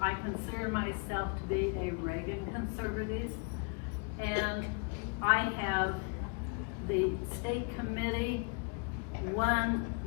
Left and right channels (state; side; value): quieter; right; 37.2 dB